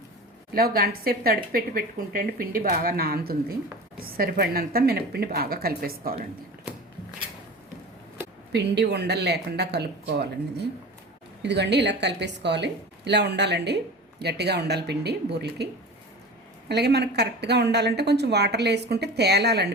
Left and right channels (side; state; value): both; normal; correlation 0.34